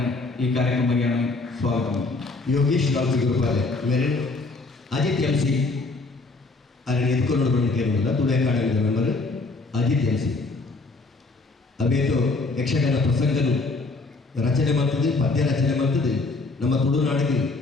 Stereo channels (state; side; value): quieter; right; 3.5 dB